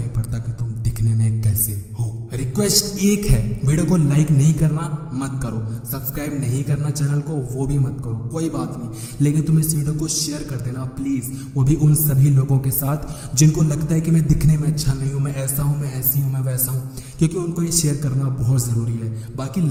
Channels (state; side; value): identical; both; correlation 1.00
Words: पड़ता कि तुम दिखने में कैसे हो। रिक्वेस्ट एक है, वीडियो को लाइक नहीं करना मत करो, सब्सक्राइब नहीं करना चैनल को वो भी मत करो, कोई बात नहीं। लेकिन तुम इस वीडियो को शेयर कर देना प्लीज, वो भी उन सभी लोगों के साथ जिनको लगता है कि मैं दिखने में अच्छा नहीं हूँ, मैं ऐसा हूँ, मैं ऐसी हूँ, मैं वैसा हूँ, क्योंकि उनको ये शेयर करना बहुत जरूरी है। बाकी